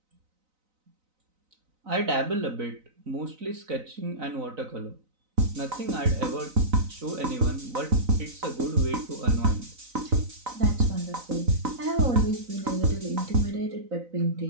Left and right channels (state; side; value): late; left; 3.9 ms